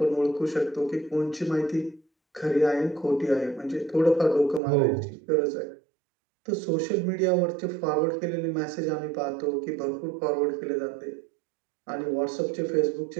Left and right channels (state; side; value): drops out; left; at 4.6 s